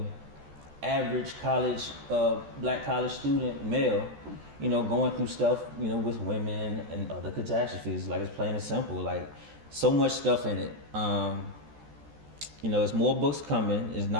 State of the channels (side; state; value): left; late; 14 ms